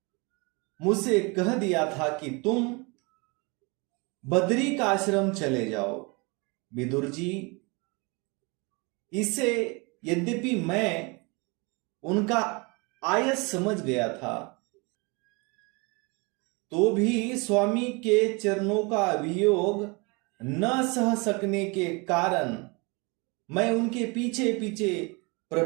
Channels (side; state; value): left; quieter; 28.8 dB